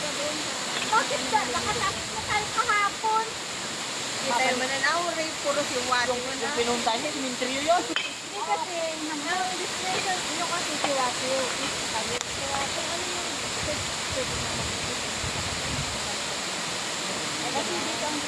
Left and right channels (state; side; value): identical; both; correlation 1.00